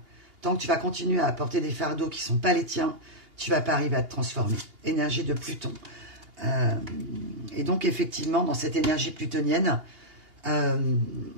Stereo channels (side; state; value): left; late; 2.8 ms